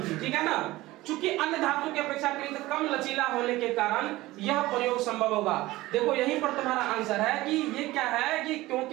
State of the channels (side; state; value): left; quieter; 18.3 dB